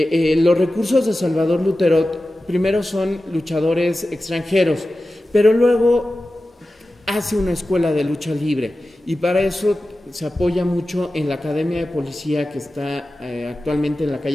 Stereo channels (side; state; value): both; normal; correlation 0.94